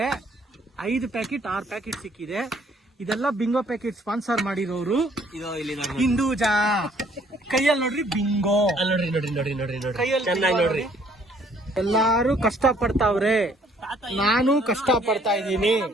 5 ಪ್ಯಾಕೆಟ್ 6 ಪ್ಯಾಕೆಟ್ ಸಿಕ್ಕಿದೆ. ಇದೆಲ್ಲ ಬಿಂಗೋ ಪ್ಯಾಕೆಟ್ ಸ್ಪಾನ್ಸರ್ ಮಾಡಿರೋರು ಹಿಂದೂಜಾ. ಕೈಯಲ್ಲಿ ನೋಡ್ರಿ ಬಿಂಗೋ, ಕೈಯಲ್ಲಿ ಎಲ್ಲಾರು ಕಷ್ಟ ಪಡ್ತಾವ್ರೆ, ನಾನು ಕಷ್ಟ ಪಡ್ತಾ ಇದ್ದೀನಿ.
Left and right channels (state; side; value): normal; both; correlation 0.62